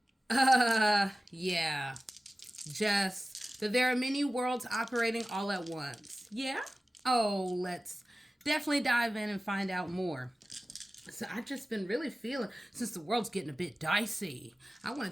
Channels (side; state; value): both; normal; correlation 0.96